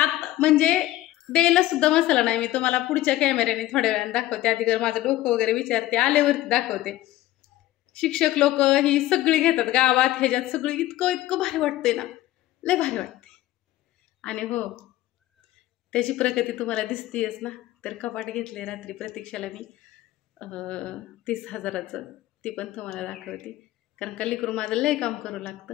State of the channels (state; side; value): quieter; right; 15.5 dB